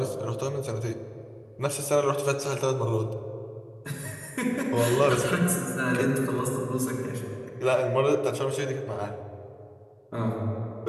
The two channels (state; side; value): identical; both; correlation 1.00